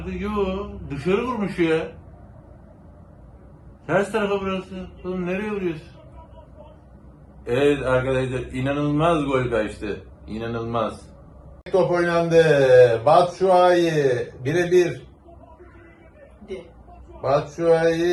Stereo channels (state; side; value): identical; both; correlation 1.00